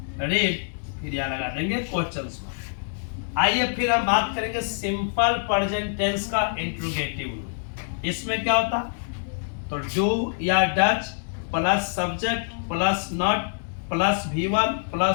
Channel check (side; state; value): right; silent; digital silence